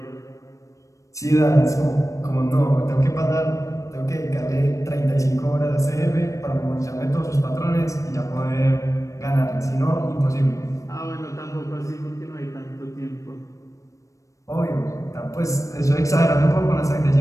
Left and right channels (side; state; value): right; late; 0.15 ms